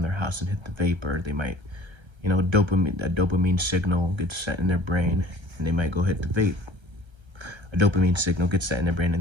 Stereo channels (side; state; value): left; late; 1.3 ms